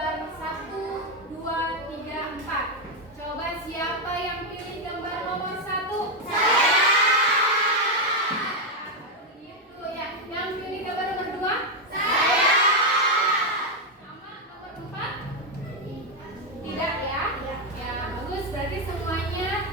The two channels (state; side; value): normal; both; correlation 0.04